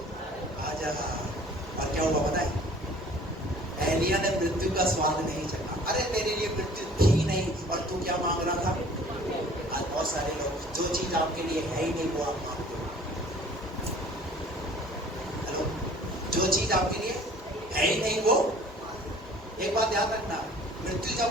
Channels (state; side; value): normal; both; correlation 0.50